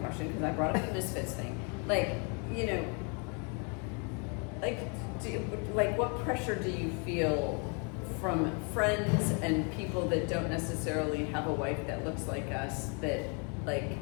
because I brought up the Misfits thing. Like, you know, like what pressure do you feel from friends and people that don't necessarily have a wife that looks like us, that like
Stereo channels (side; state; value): right; quieter; 36.4 dB